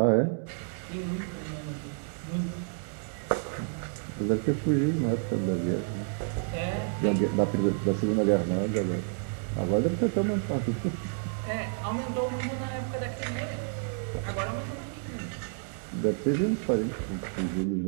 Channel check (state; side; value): silent; left; 56 dB below the other